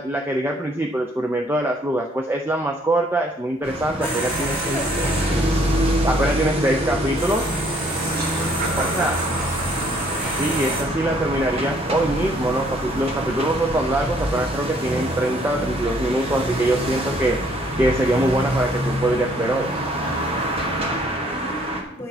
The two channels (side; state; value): both; normal; correlation 0.63